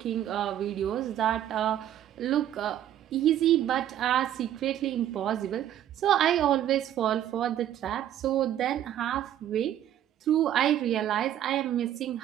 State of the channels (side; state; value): left; quieter; 11.4 dB